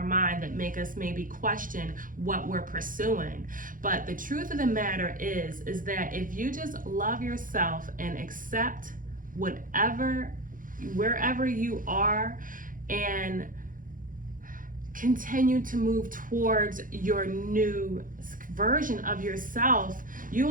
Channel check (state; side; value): late; left; 0.39 ms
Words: mind that make us maybe question what we're pursuing. But the truth of the matter is that if you just love yourself and accept wherever you are, and continue to move towards your new version of yourself,